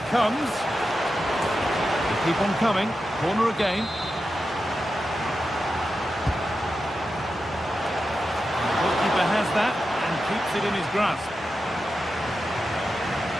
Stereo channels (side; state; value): both; normal; correlation 0.90